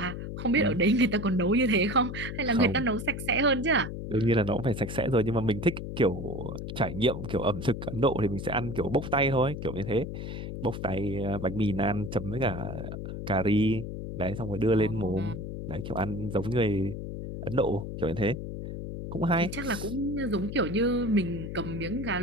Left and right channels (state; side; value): noise; left; hum, 7 dB below the sound